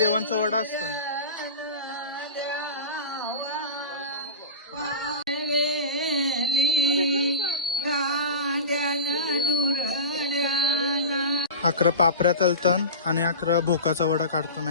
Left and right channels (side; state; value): both; inverted; correlation -0.31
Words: वडा असतं. अकरा पापऱ्या तलतन आणि अकरा भोकाचा वडा